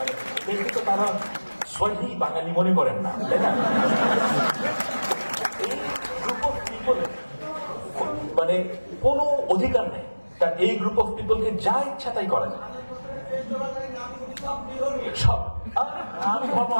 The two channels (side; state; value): both; inverted; correlation -1.00